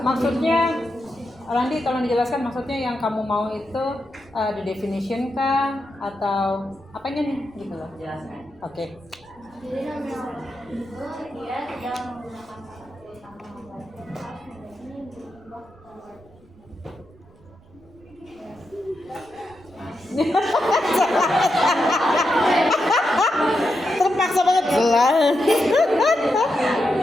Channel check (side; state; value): right; noise; rumble, 27 dB below the sound